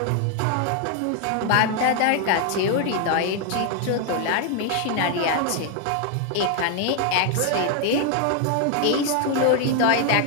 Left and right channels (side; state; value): both; different; correlation 0.00